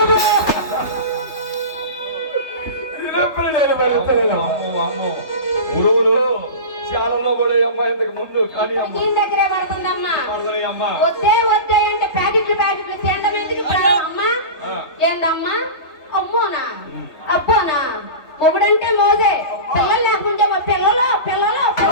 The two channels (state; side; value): late; right; 3.3 ms